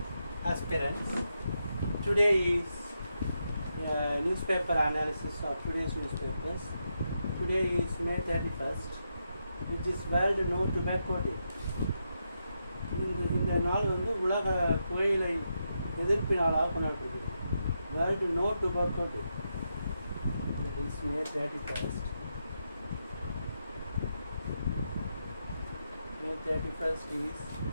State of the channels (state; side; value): inverted; both; correlation -0.84